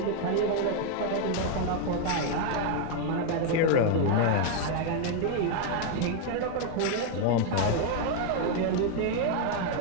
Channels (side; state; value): both; different; correlation 0.00